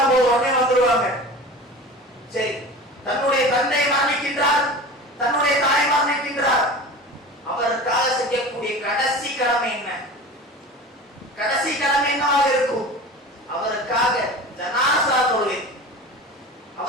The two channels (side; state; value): both; normal; correlation 0.35